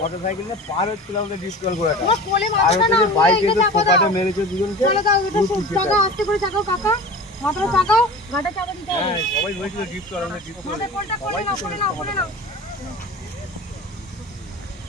নিয়ে পার হচ্ছিল, আমাদের ডিসকাল করে বাইক এসে ফোকাটে মেরেছে দুজনকে। সবাই বলেছিল ডিসকাল, আমাদের ডিসকাল।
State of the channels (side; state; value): both; normal; correlation 0.35